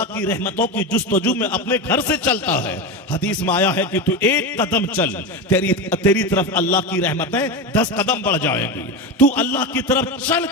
की रहमतों की जुस्तजू में अपने घर से चलता है। हदीस में आया है कि तू 1 कदम चल, तेरी तरफ अल्लाह की रहमतें 10 कदम बढ़ जाएंगी। तू अल्लाह की तरफ चल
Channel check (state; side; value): normal; both; correlation 0.20